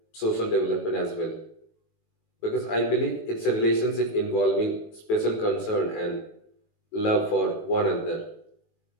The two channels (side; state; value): right; late; 18 ms